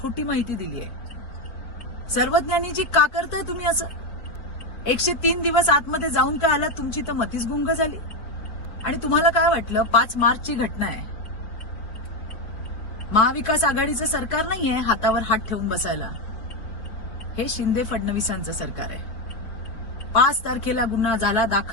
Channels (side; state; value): right; late; 4.3 ms